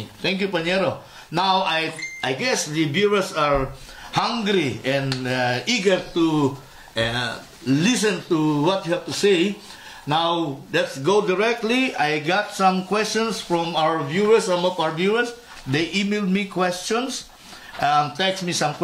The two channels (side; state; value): both; identical; correlation 1.00